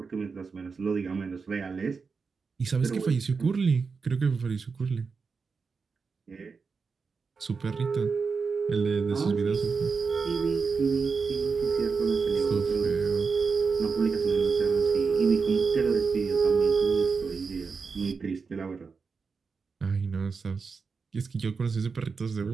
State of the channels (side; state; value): left; quieter; 5.0 dB